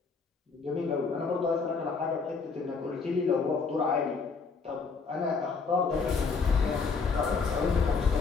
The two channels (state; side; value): quieter; right; 4.9 dB